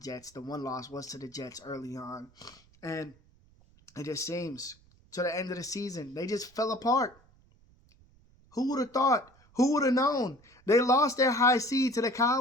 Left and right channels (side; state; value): right; noise; rumble, 29 dB below the sound